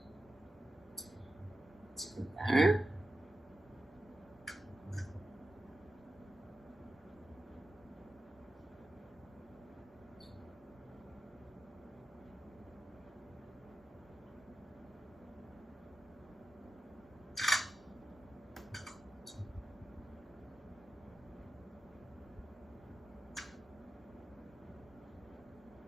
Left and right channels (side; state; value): both; normal; correlation 0.91